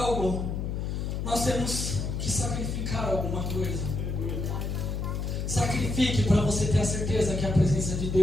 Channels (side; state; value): left; noise; hum, 2 dB below the sound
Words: nós temos que sacrificar alguma coisa. Sacrifique para você ter a certeza que é a presença de